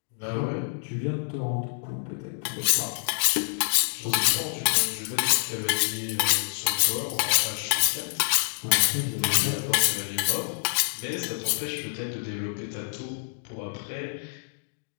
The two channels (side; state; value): right; silent; digital silence